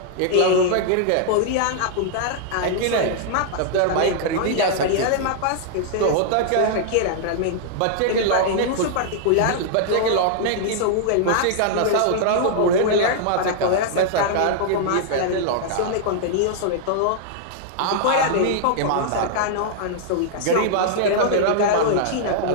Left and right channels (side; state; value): both; different; correlation -0.01